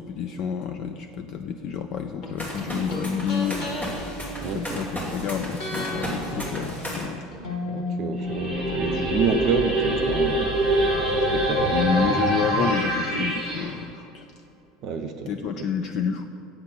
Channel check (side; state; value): both; normal; correlation 0.43